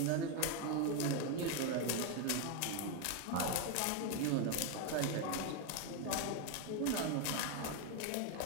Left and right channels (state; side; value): different; both; correlation 0.01